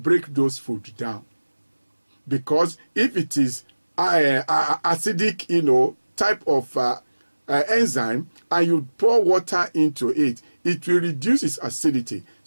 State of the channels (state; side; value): inverted; both; correlation -1.00